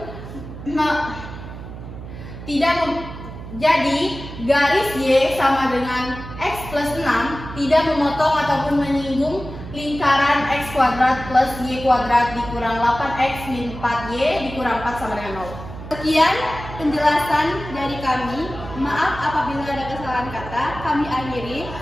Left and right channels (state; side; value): noise; right; hum, 12 dB below the sound